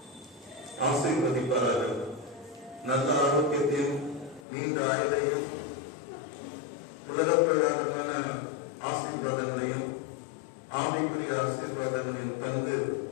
ஆசீர்வதிப்பார்கள். நல்ல ஆரோக்கியத்தையும் நீண்ட ஆயுளையும் உலக பிரகாரமான ஆசீர்வாதங்களையும் ஆவிக்குரிய ஆசீர்வாதங்களையும் தந்து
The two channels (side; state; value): right; drops out; at 4.5 s